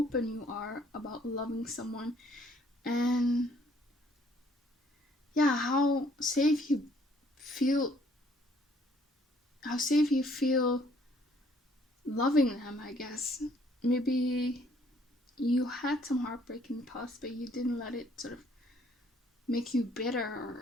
you are about loving someone, and yeah, how safe you feel loving them, I guess. Maybe you had some heartbreak in the past, but you didn't let it sort of make you bitter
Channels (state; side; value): normal; both; correlation 0.63